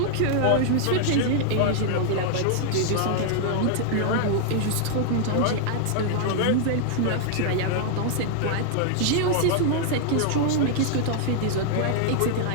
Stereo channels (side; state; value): both; different; correlation 0.00